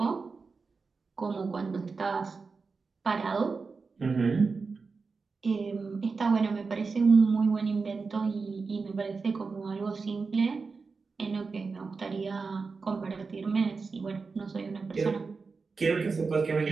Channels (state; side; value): quieter; left; 4.6 dB